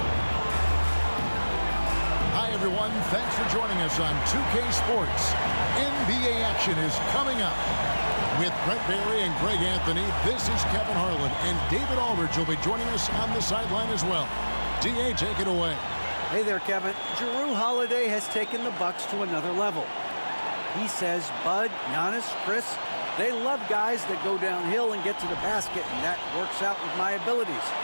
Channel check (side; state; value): both; inverted; correlation -1.00